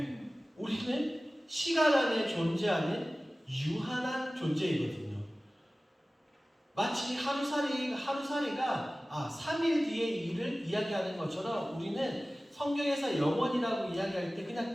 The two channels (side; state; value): both; normal; correlation 0.97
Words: 우리는 시간 안에 존재하는 유한한 존재이거든요. 마치 하루살이가 3일 뒤의 일을 이야기하는 것처럼 우리는 성경에서 영원이라고 이야기할 때